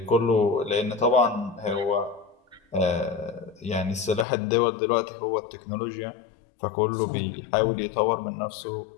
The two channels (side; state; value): right; drops out; at 4.2 s